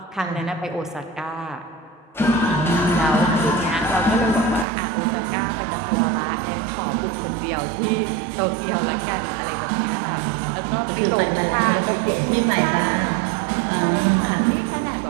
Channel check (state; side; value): drops out; left; at 4.7 s